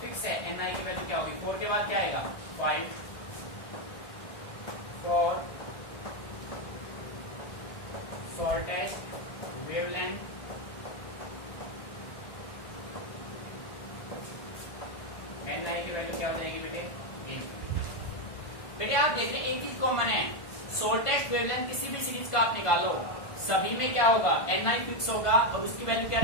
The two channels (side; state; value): right; late; 1.5 ms